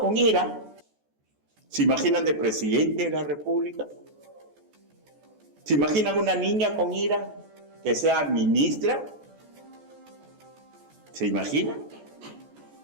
ira, ¿se imaginan de presidente de la República? ¿Se imaginan una niña con ira que sea ministra? ¿Se imaginan?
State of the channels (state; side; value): late; left; 14 ms